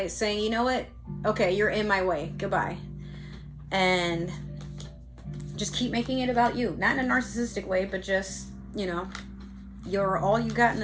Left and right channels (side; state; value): both; identical; correlation 1.00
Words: saying, you know what? Okay, you're in my way. Goodbye. And just keep making it about you. Not in a narcissistic way, but just, you know, you're all you got in